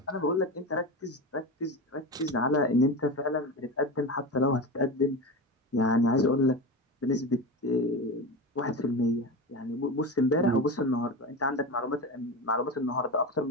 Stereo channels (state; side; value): normal; both; correlation 0.23